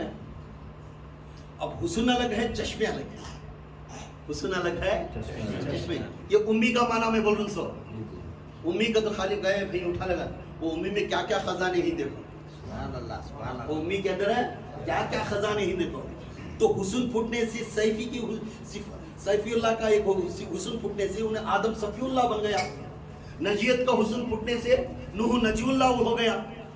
اب حسن الگ ہے, چشمے الگ ہے. حسن الگ ہے, چشمے. یہ امی کا معنی میں بول رہا ہوں. سو امی کا تو خالی گئے بھائی اٹھا لگا, وہ امی میں کیا کیا خزانے ہی دیکھو. سبحان اللہ سبحان وہ اللہ. امی کے اندر ہے کیا کیا خزانے ہی دیکھو. تو حسن پھٹنے سے سیفی اللہ کا ایک حسن پھٹنے سے انہیں آدم صفی اللہ بن گیا. نجیت کا حسن پھٹنے سے نوح نجی اللہ ہو گیا.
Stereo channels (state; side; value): identical; both; correlation 1.00